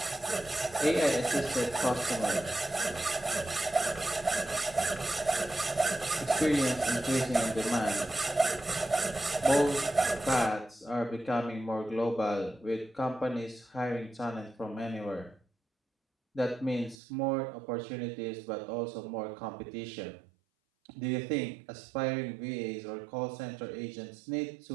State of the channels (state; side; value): drops out; left; at 16.9 s